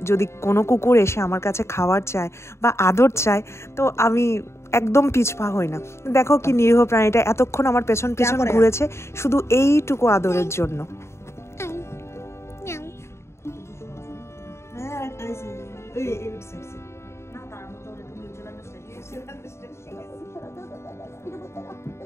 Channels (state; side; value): late; right; 0.13 ms